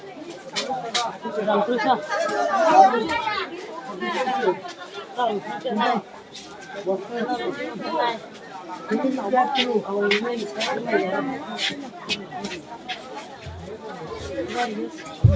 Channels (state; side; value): identical; both; correlation 1.00